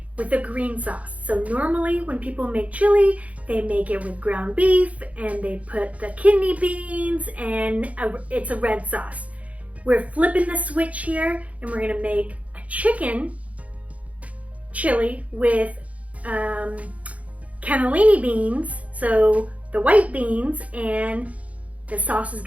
with a green sauce. So normally when people make chili, they make it with ground beef and they put the kidney beans and it's a red sauce. We're flipping the switch here and we're gonna make a chicken chili with cannelloni beans, so the white beans, and the sauce is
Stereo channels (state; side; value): late; left; 0.067 ms